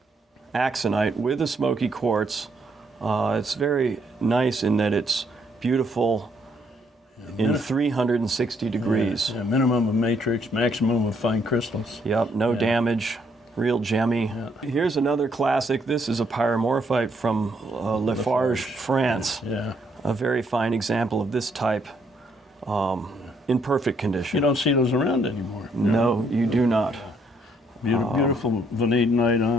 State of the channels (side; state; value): both; normal; correlation 0.70